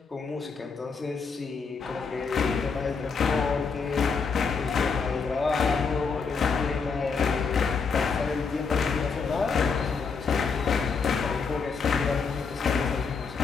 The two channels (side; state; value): right; quieter; 5.2 dB